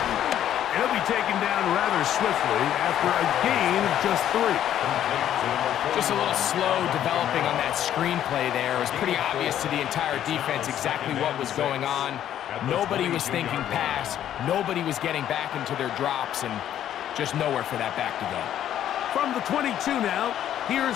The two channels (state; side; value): quieter; right; 11.0 dB